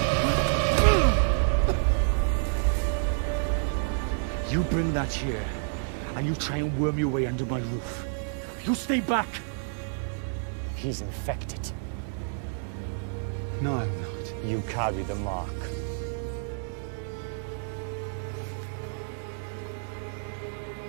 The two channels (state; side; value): silent; left; digital silence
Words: You bring that here, and you try and worm your way under my roof. You stay back! He's infected. No, I'm not. You carry the mark.